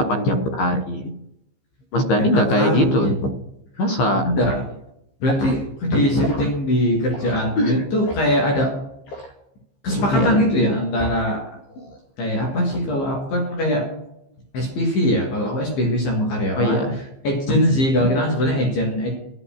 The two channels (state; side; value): late; right; 15 ms